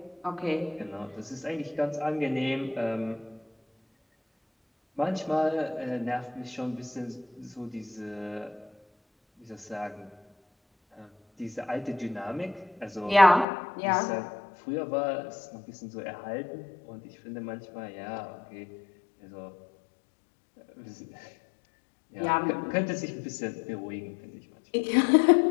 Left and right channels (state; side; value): drops out; right; at 13.5 s